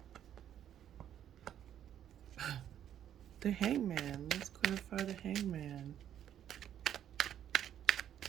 the Hangman. Let's clarify the Hangman.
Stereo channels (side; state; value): left; quieter; 10.3 dB